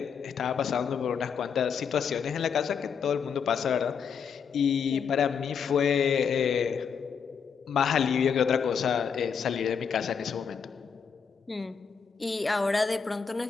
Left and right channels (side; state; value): right; quieter; 6.6 dB